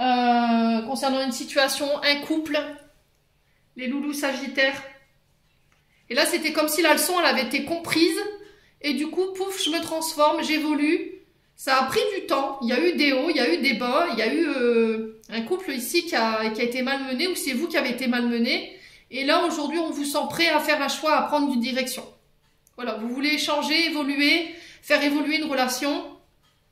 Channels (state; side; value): identical; both; correlation 1.00